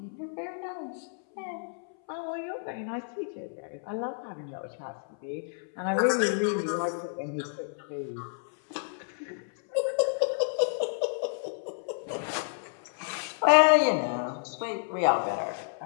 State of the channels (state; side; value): silent; right; 58 dB below the other